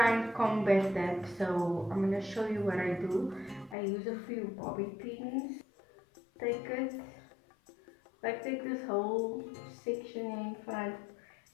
and combat that. So I'm gonna show you what I do. I use a few bobby pins. Take it, like take this whole section in front,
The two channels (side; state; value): right; drops out; at 3.8 s